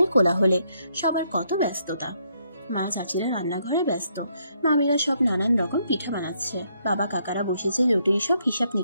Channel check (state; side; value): inverted; both; correlation -0.73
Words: কোলাহলে। সবার কত ব্যস্ততা। মা চাচিরা রান্নাঘরে ব্যস্ত। মামিরা সব নানান রকম পিঠা বানাচ্ছে। বাবা কাকারা বসেছে জটিল সব হিসাব